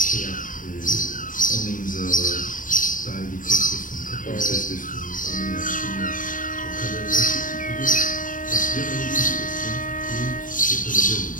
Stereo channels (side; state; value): right; late; 0.39 ms